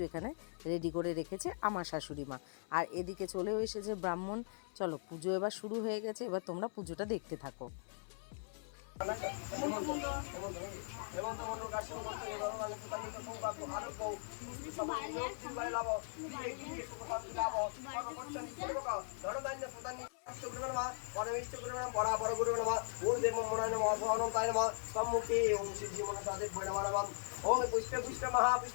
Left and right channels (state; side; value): silent; right; 52 dB below the other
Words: এখানে রেডি করে রেখেছে আমার শাশুড়ি মা। আর এদিকে চলেও এসেছে ব্রাহ্মণ। চলো, পুজো এবার শুরু হয়ে গেছে, এবার তোমরা পুজোটা দেখতে থাকো। ओम पुष्प पुष्प